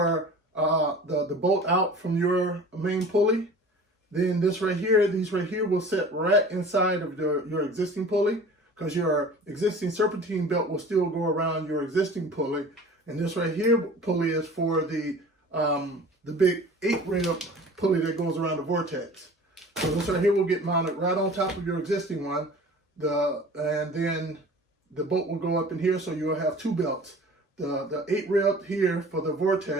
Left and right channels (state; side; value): normal; both; correlation 0.43